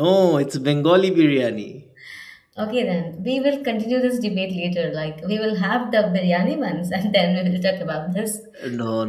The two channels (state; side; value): identical; both; correlation 1.00